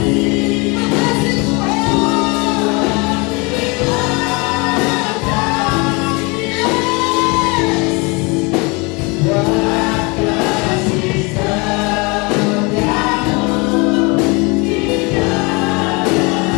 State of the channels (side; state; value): right; quieter; 28.3 dB